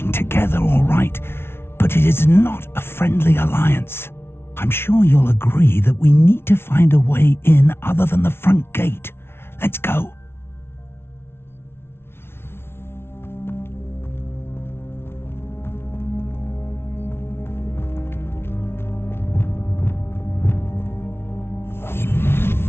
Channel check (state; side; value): late; right; 0.12 ms